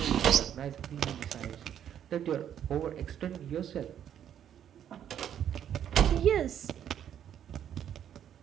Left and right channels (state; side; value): quieter; left; 9.7 dB